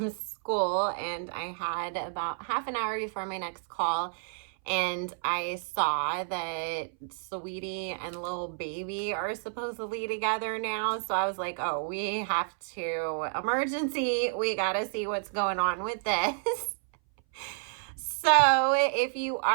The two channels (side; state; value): left; silent; 58 dB below the other